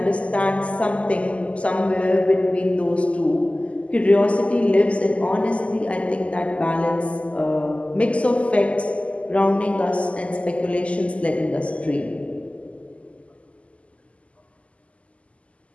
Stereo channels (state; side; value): late; right; 0.062 ms